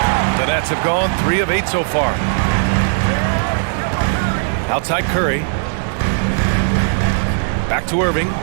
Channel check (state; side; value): silent; left; digital silence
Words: The Nets have gone 3 of 8 so far. Outside Curry. Back to Irving.